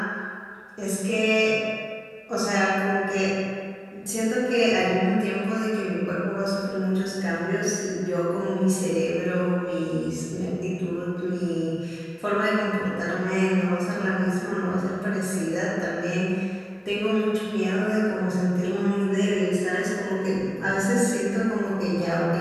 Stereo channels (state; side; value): identical; both; correlation 1.00